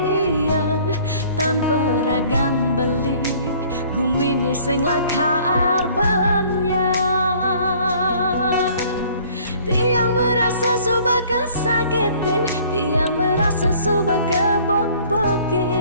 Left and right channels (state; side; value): inverted; both; correlation -0.55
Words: tanpa ragan beli gumini sing lakar banyak tiang merasa suba kesakitin tiang merasa suba